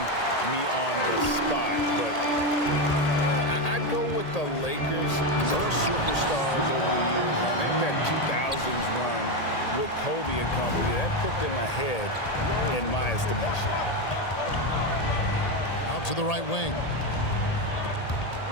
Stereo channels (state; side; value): late; right; 1.8 ms